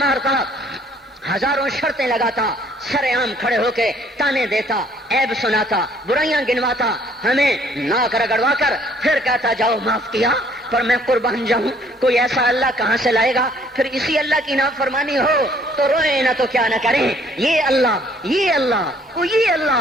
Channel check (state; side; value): normal; both; correlation 0.61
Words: ہزاروں شرطیں لگاتا، سر عام کھڑے ہو کے تانے دیتا، عیب سناتا، برائیاں گنواتا، ہمیں ناک رگڑوا کر پھر کہتا جاؤ معاف کیا، پر میں قربان جاؤں، کوئی ایسا اللہ کہاں سے لائے گا؟ پھر اسی اللہ کی نافرمانی ہو تو روئیں نہ تو کیا نہ کریں۔ یہ اللہ، یہ اللہ، یہ